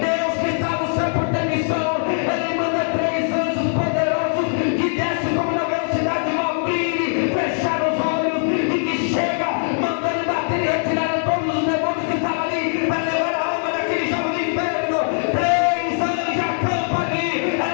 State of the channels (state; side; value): silent; right; digital silence